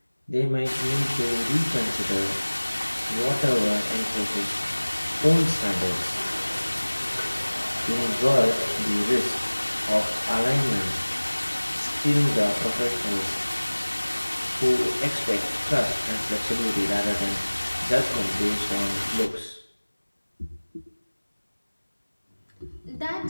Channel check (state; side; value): inverted; both; correlation -1.00